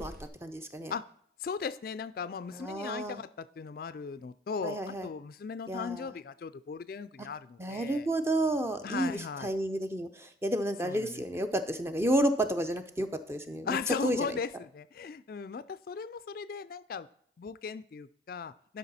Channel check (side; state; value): both; normal; correlation 0.58